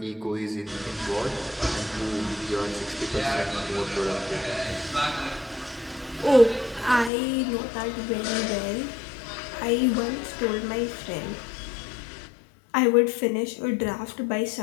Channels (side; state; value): right; drops out; at 7.1 s